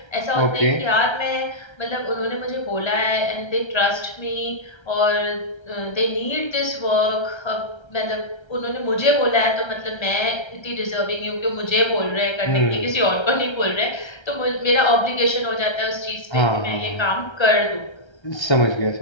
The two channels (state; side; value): late; right; 1.3 ms